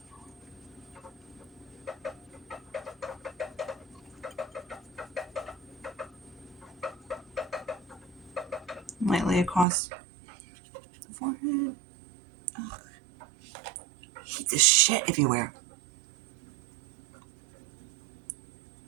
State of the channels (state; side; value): drops out; left; at 9.7 s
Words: Lightly across the forehead. Ugh. I hate this shit everywhere.